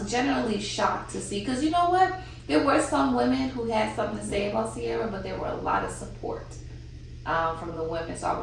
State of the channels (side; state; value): both; identical; correlation 1.00